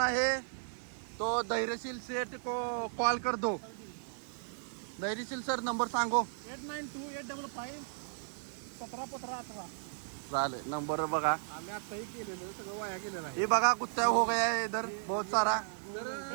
है तो धैर्यशील सेठ को कॉल कर दो. धैर्यशील सर नंबर सांगो. 8928551718. चालेल, नंबर बघा. आम्ही आताही केलेलं सगळं वाया गेलेलं आहे. ये बघा कुत्ता हो गया है इधर बहुत सारा.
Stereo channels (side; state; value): left; silent; digital silence